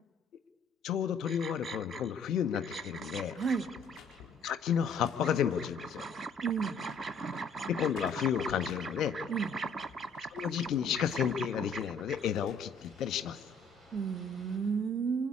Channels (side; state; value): right; quieter; 3.7 dB